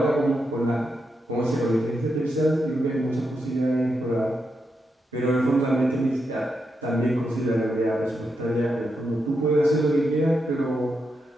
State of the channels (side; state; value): both; normal; correlation 0.84